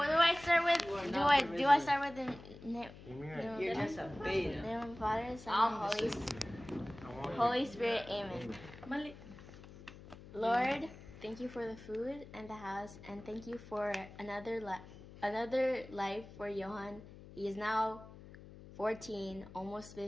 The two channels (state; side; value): noise; left; hum, 17 dB below the sound